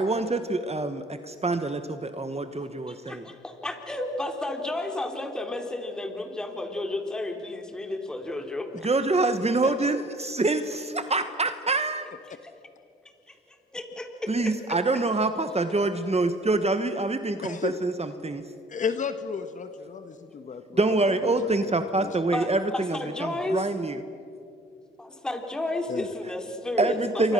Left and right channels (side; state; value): both; normal; correlation 0.54